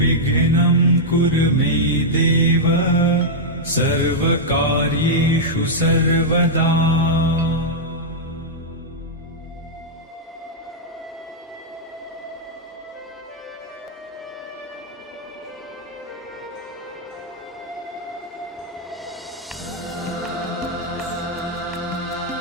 कुरु मे देव सर्वकार्येषु सर्वदा।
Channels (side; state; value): both; normal; correlation -0.07